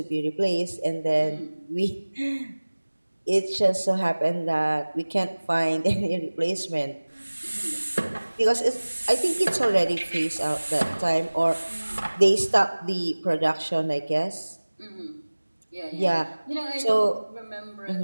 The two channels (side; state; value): both; inverted; correlation -1.00